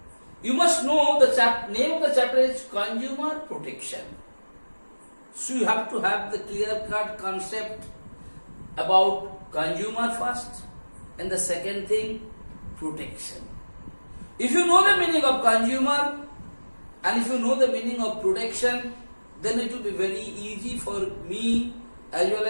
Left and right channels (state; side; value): inverted; both; correlation -1.00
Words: you must know the name of the chapter is Consumer Protection. So you have to have the clear-cut concept about consumer first, and the second thing, protection. If you know the meaning of consumer and if you know the meaning of protection, then it will be very easy for me as well